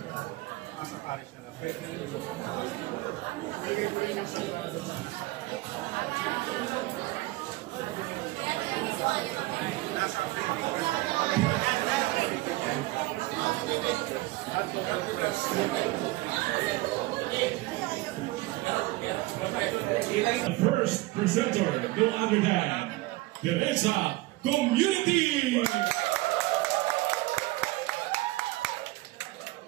Nasa parish na lang. The first presenter, no other than Teresa Community.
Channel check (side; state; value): left; quieter; 19.6 dB